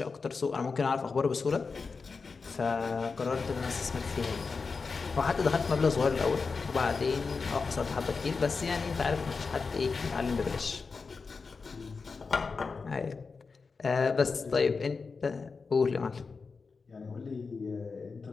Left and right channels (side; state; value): right; quieter; 4.7 dB